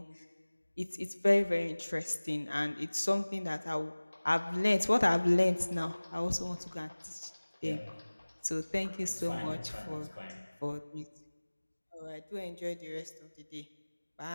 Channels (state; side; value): inverted; both; correlation -1.00